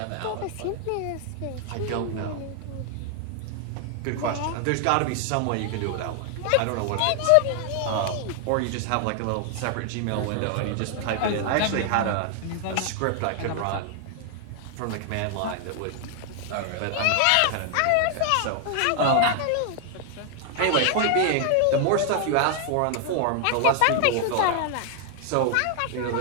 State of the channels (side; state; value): both; different; correlation 0.00